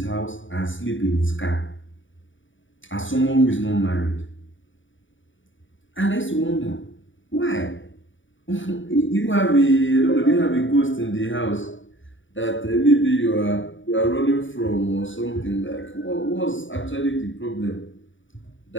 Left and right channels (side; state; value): right; late; 0.56 ms